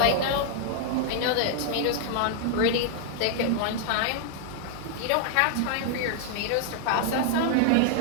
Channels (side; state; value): both; different; correlation 0.00